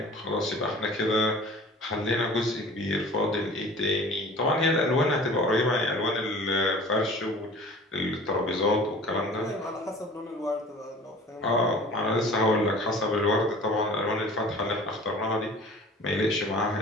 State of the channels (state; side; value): normal; both; correlation 0.44